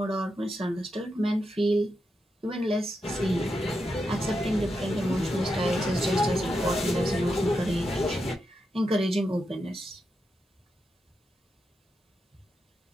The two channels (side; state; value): both; normal; correlation 0.86